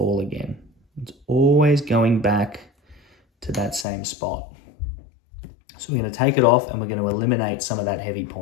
again. It's always going back to that same spot. So we're going to take it off and we're going to eliminate some of that heavy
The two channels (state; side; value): drops out; right; at 3.9 s